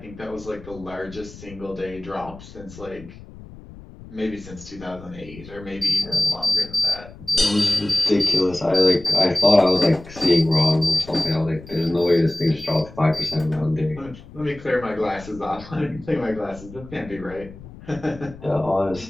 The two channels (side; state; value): left; noise; rumble, 17 dB below the sound